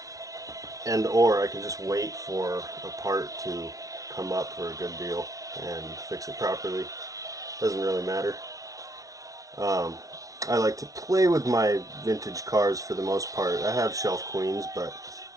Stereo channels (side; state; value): left; late; 0.17 ms